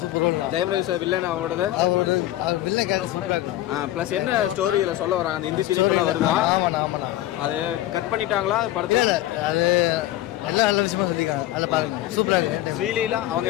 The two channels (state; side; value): quieter; right; 14.6 dB